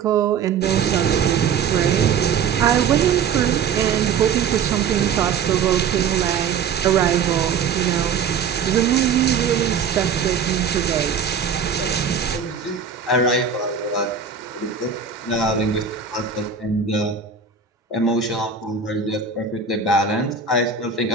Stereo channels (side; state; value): left; quieter; 6.4 dB